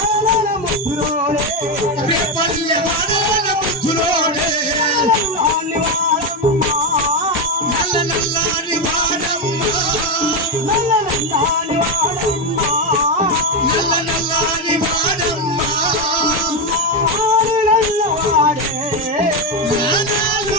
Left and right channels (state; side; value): normal; both; correlation 0.09